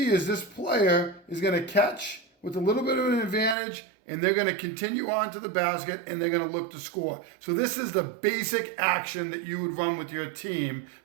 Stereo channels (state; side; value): drops out; left; at 3.6 s